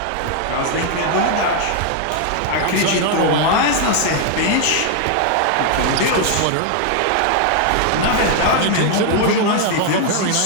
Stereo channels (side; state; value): both; different; correlation 0.00